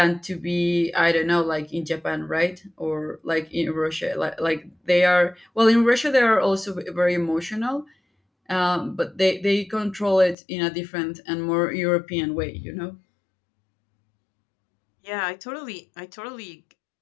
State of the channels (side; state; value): right; drops out; at 10.4 s